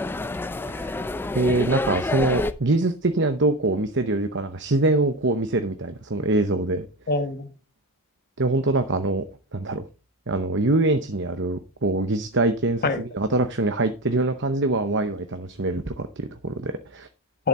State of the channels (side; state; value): both; normal; correlation 0.23